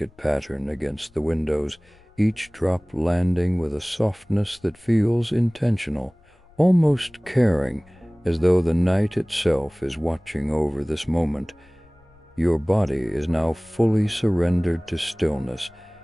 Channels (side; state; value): left; noise; rumble, 30 dB below the sound